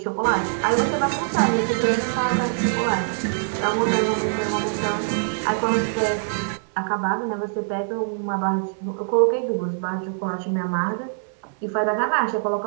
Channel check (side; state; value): left; silent; 63 dB below the other